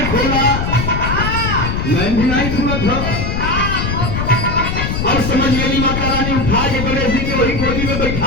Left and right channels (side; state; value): left; noise; rumble, 2 dB below the sound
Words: खोला, नैन भी नहीं खुला था। और समझ गई माता रानी उठा के गणेश जी के वही गोदी में